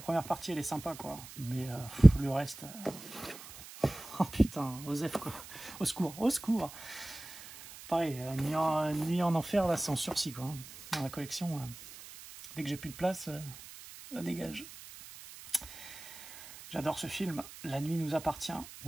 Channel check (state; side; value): noise; right; hiss, 16 dB below the sound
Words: partie, elle est sympa, quoi. Mais le reste... Oh putain, Osef, quoi. Au secours, au secours. Pareil, Nuit en enfer, là, c'est en sursis, quoi. Dans la collection, dès que j'ai plus de place, ça dégage. J'adore ce film. La nuit nous appartient.